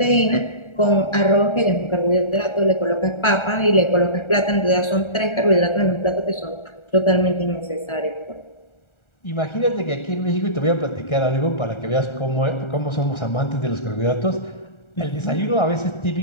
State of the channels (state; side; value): late; right; 1.4 ms